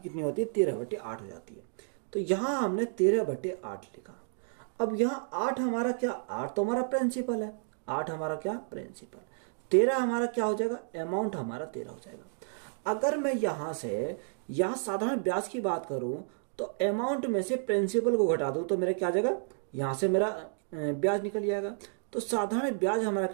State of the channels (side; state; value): left; silent; digital silence